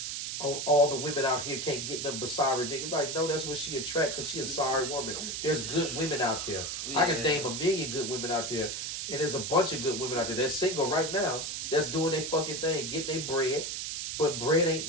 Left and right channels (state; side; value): noise; right; hiss, 4 dB below the sound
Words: oh, all the women out here can't get them but sorry niggas. Like, no, that's what she attract because she a sorry woman. There's good women out there. Yeah. I can name a million good women out there. And there's a bunch of good women out there that's single right now that's doing their fucking thing, getting their bread. But bread ain't